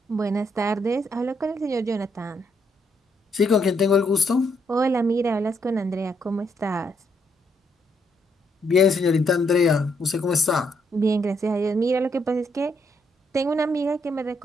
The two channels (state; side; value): normal; both; correlation 0.74